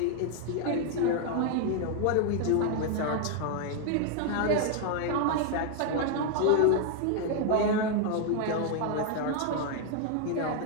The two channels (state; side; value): different; both; correlation 0.00